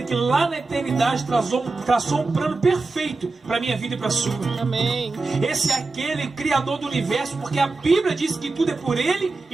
que lá na eternidade traçou um plano perfeito para a minha vida e para a sua. Amém. Esse é aquele criador do universo, porque a Bíblia diz que tudo é por ele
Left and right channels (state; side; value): quieter; left; 3.7 dB